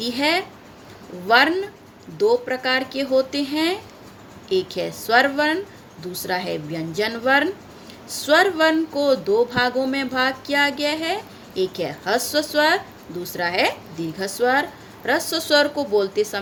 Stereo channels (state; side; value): identical; both; correlation 1.00